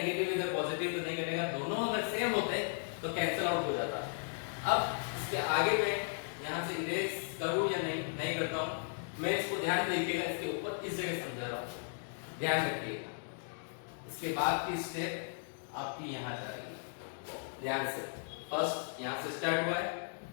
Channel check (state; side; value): silent; right; digital silence